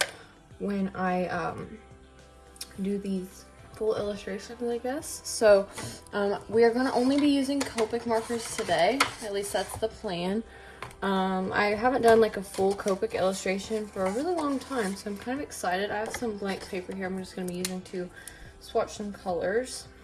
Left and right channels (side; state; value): both; identical; correlation 1.00